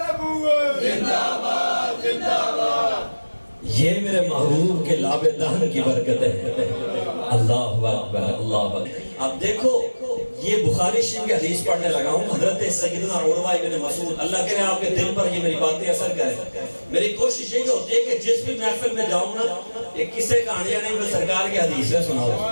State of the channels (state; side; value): inverted; both; correlation -1.00